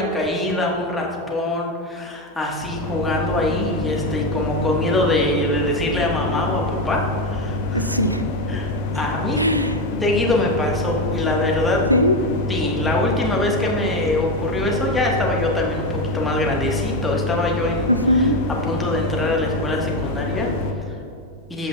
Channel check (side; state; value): both; normal; correlation 0.12